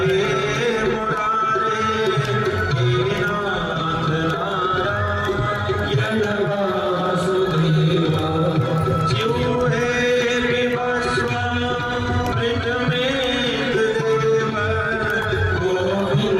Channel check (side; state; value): both; identical; correlation 1.00